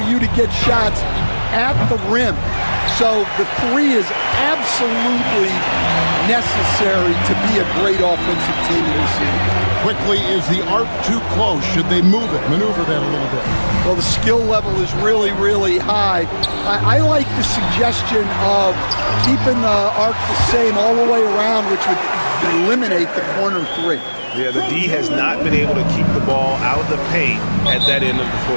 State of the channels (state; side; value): inverted; both; correlation -1.00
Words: you to get shots at the rim. So the three is absolutely necessary to be a great offensive team in this league. Quickly, is the arc too close? Should they move it, maneuver that a little bit? Well, the skill level is really, really high. I like the suggestion of keeping the arc the same all the way around, which would eliminate the corner three. Yeah, the D has not been able to keep the ball out of the paint at that end of the